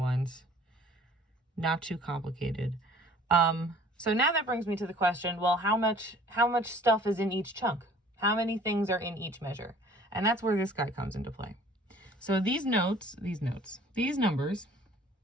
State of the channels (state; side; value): normal; both; correlation 0.52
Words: Not too complicated. So now that brings me to the question, well, how much stuff is in each chunk? How many things are in each measure? And that's where this guy comes into play. So these numbers